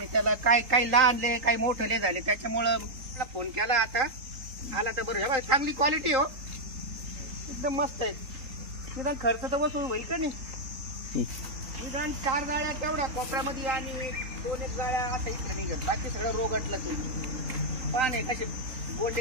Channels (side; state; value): left; late; 3.9 ms